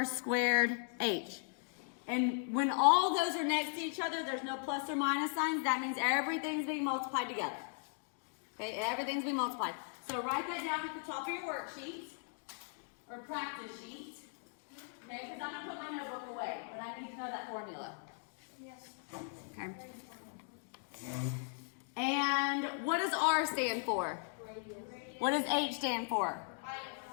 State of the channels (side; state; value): right; silent; 52 dB below the other